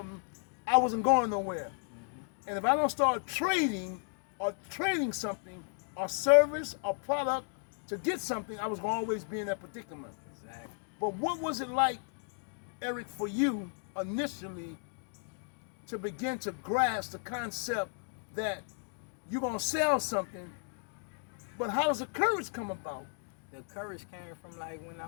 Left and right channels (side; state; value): right; silent; 55 dB below the other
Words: I wasn't going nowhere. And if I don't start trading or trading something or service or product to get something, I was going to always be in that predicament. Exactly. But what was it like, Eric, for you initially to begin to grasp the concept that you're going to sell something, but how does the courage come about? The courage came from like when I